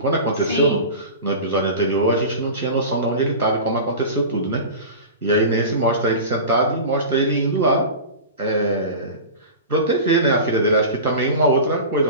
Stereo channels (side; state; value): both; inverted; correlation -0.31